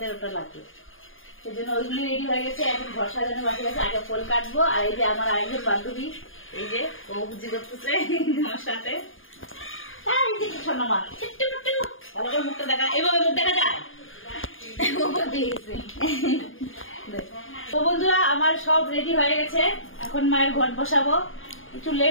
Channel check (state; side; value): late; right; 0.59 ms